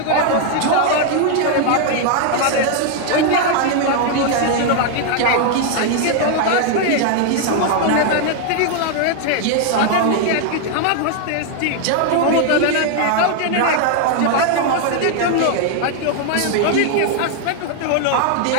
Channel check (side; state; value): both; different; correlation 0.00